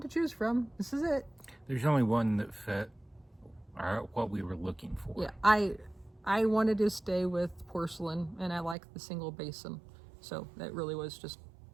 to choose from. This is it. There's only one that fit what we were looking for. Yeah, I wanted to stay with porcelain, and I like the single basin. So that really was just,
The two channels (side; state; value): left; drops out; at 8.8 s